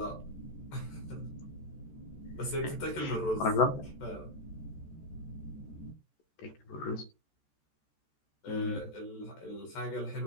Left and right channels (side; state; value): right; late; 14 ms